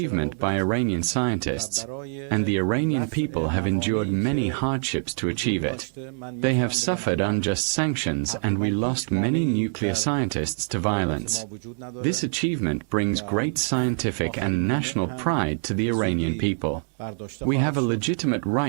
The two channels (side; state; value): left; silent; digital silence